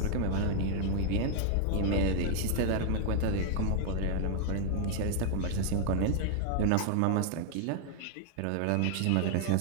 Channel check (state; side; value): different; both; correlation -0.01